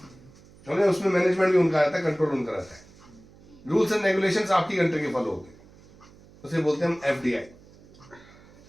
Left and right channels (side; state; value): right; noise; hum, 24 dB below the sound